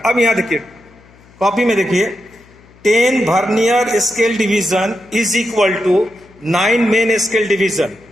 अब यहां देखिए कॉपी में देखिए, 10 vernier scale division is equal to 9 main scale division.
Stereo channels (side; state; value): left; noise; hum, 27 dB below the sound